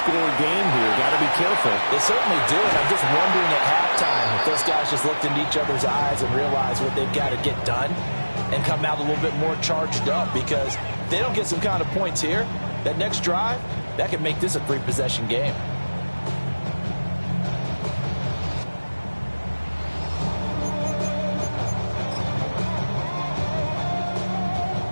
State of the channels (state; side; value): inverted; both; correlation -1.00